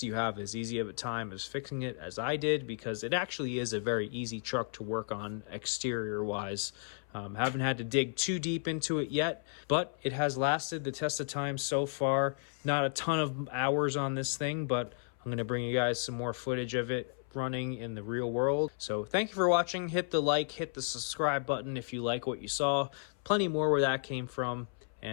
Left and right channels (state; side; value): silent; right; 55 dB below the other